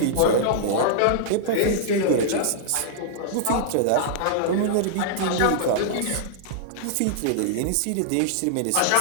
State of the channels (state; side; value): different; both; correlation -0.01